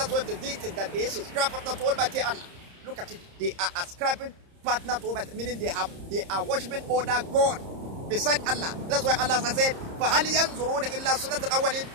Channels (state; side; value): late; left; 30 ms